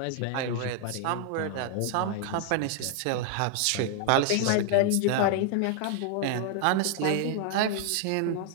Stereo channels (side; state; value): both; different; correlation 0.00